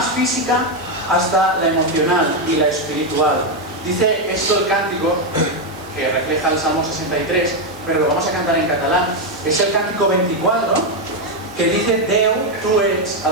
física hasta la emocional y la espiritual. Dice esto el cántico, que refleja el Salmo 63, pero lo vamos a cantar en catalán. Es el cántico 24, que dice, Déu, tu ets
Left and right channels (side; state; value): right; noise; hiss, 23 dB below the sound